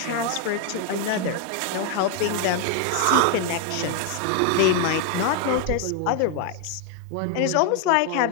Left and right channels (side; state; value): both; different; correlation 0.01